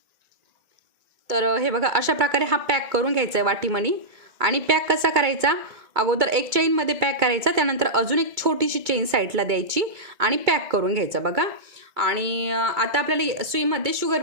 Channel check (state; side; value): late; left; 2.3 ms